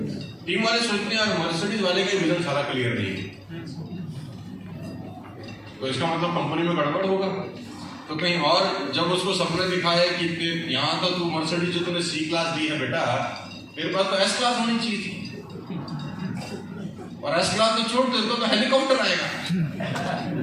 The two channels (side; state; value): both; identical; correlation 1.00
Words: टीम वाले सोचते हैं यार मर्सिडीज वाले का विजन सारा क्लियर नहीं है, तो इसका मतलब कंपनी में गड़बड़ होगा। तो कहीं और जब उसको सपने दिखाए कि यहाँ तो तू मर्सिडीज जो तूने C क्लास दी है बेटा, मेरे पास तो S क्लास होनी चाहिए थी, और S क्लास तो छोड़ दे तो हेलीकॉप्टर आएगा।